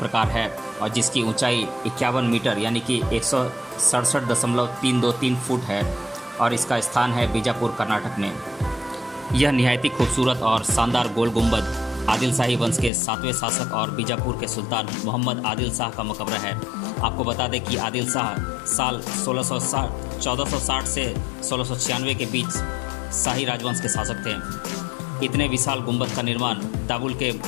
है और जिसकी ऊंचाई 51 मीटर यानी कि 167.323 फुट है और इसका स्थान है बीजापुर, कर्नाटक में। यह निहायती खूबसूरत और शानदार गोल गुंबद आदिल शाही वंश के 7वें शासक और बीजापुर के सुल्तान मोहम्मद आदिल शाह का मकबरा है। आपको बता दें कि आदिल शाह साल 1460 से 1696 के बीच शाही राजवंश के शासक थे। इतने विशाल गुंबद का निर्माण दाबुल के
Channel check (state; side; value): drops out; right; at 12.9 s